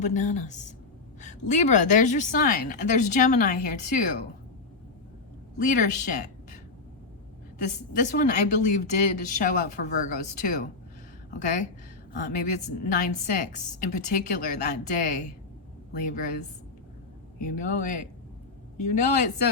Libra. There's your sign. And there's Gemini here too. Leadership. This one I believe did show up for Virgos too. Okay, maybe it's 9-6 in particular that day. Libras. You know it. You know it.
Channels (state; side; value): quieter; right; 3.9 dB